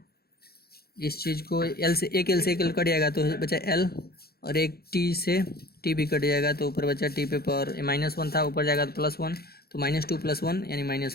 इस चीज़ को एल से एक एल कट जाएगा तो बचा एल, और एक टी से टी भी कट जाएगा तो ऊपर बचा टी पे पावर -1 था, ऊपर जाएगा तो +1, तो -2 + 1 यानी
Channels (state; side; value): late; right; 0.45 ms